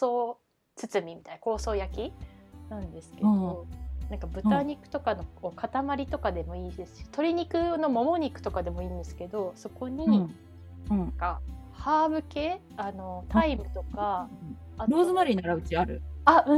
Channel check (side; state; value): both; identical; correlation 1.00